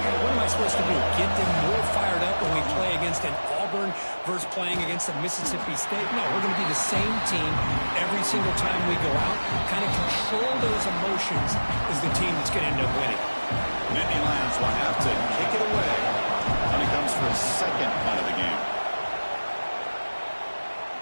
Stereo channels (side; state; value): both; inverted; correlation -1.00